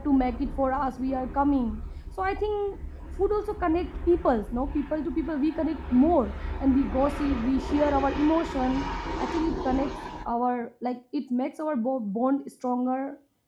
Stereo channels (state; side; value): identical; both; correlation 1.00